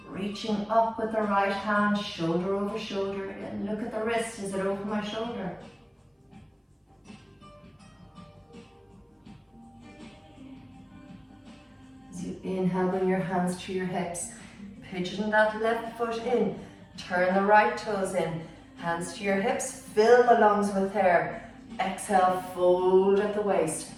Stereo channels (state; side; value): identical; both; correlation 1.00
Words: Reaching up with the right hand, shoulder over shoulder. And look at the wrist. Is it over my shoulder? As you inhale, bring your hands to your hips. Pigeon that left foot in. Turn the right toes in. Hands to your hips. Fill the lungs with air. Exhale, fold at the waist.